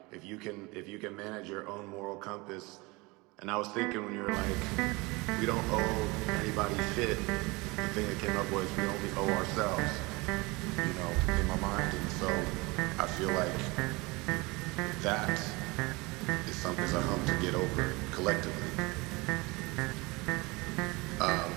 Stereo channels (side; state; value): left; quieter; 24.7 dB